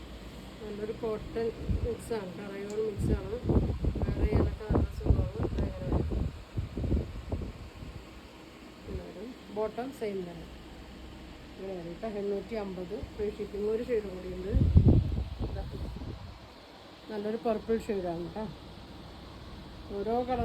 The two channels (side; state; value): both; identical; correlation 1.00